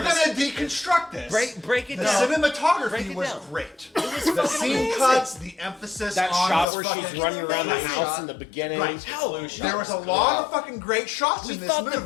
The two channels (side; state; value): right; drops out; at 6.7 s